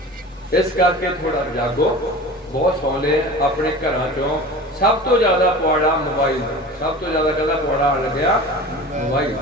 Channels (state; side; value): normal; both; correlation 0.36